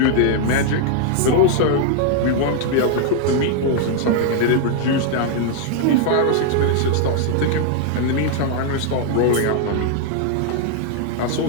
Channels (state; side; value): different; both; correlation 0.00